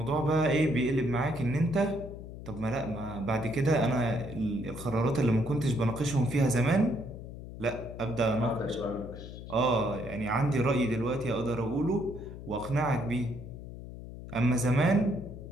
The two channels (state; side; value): noise; left; hum, 12 dB below the sound